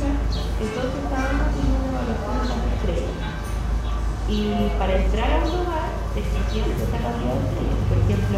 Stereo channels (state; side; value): identical; both; correlation 1.00